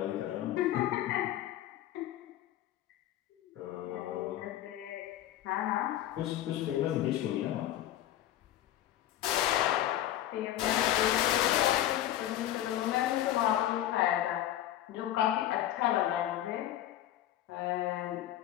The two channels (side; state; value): right; quieter; 12.9 dB